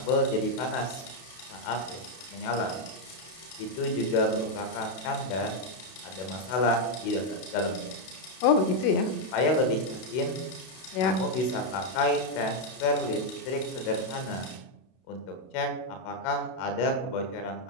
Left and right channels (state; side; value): late; right; 32 ms